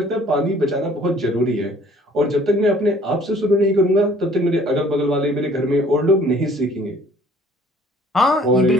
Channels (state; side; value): normal; both; correlation 0.55